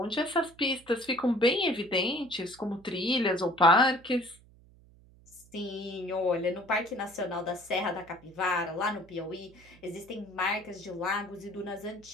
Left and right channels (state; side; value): noise; right; hum, 26 dB below the sound